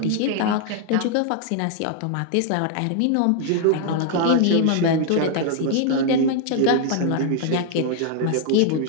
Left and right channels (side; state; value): both; different; correlation 0.00